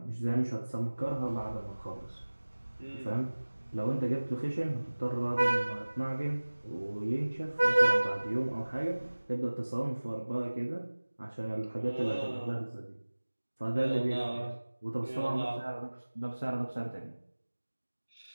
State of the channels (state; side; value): inverted; both; correlation -1.00